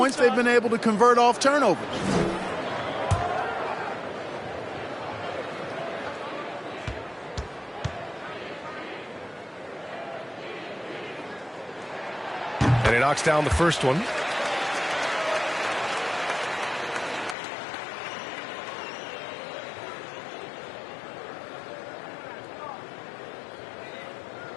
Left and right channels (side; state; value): right; drops out; at 17.4 s